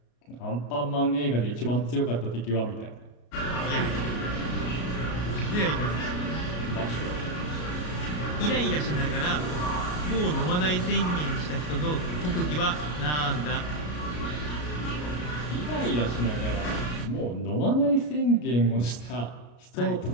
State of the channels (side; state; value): right; late; 33 ms